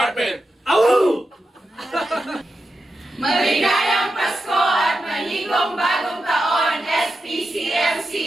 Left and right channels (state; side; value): normal; both; correlation 0.89